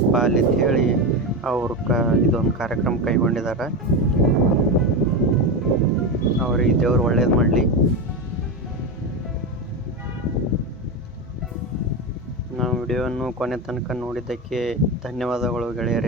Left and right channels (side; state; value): both; normal; correlation 0.16